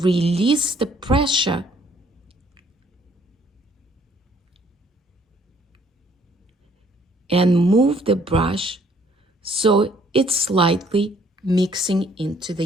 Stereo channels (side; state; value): both; normal; correlation 0.63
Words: the pressure and move the brush so it's slightly mixing into the